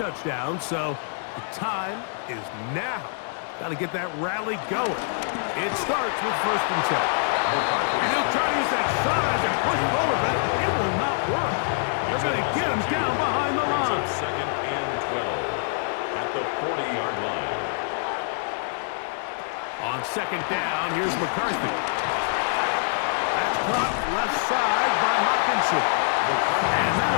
so the time is now. Got to get that rally going. It starts with 1st and 10. And he'll try to use that size and push forward, but it will not work. They're going to get him down behind the line. 2nd and 12 at the 40-yard line. On 2nd down, here's McCarthy. That's caught left side by Hawkinson. And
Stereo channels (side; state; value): right; silent; digital silence